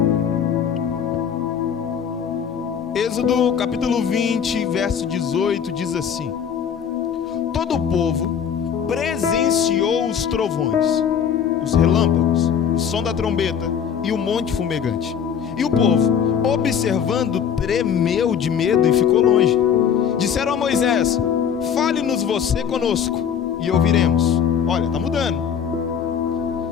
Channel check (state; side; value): quieter; right; 7.9 dB